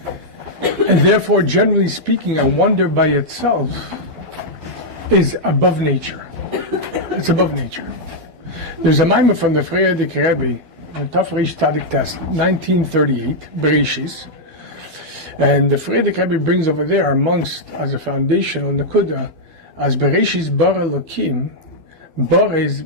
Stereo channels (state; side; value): late; left; 12 ms